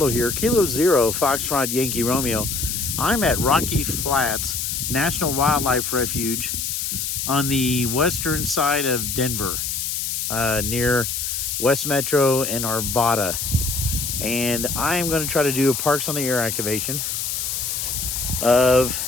here. Kilo Zero, Foxtrot Yankee Romeo. I'm at Rocky Flats National Wildlife Refuge on the western side of Denver, near West Metro and Arvada. And I'm going to try to do a Parks on the Air activation of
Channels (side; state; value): left; noise; hiss, 2 dB below the sound